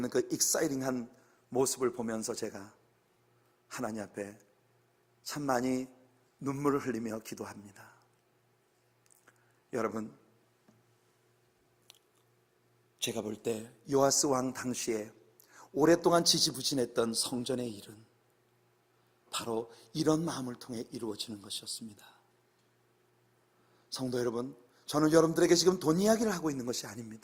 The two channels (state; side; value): identical; both; correlation 1.00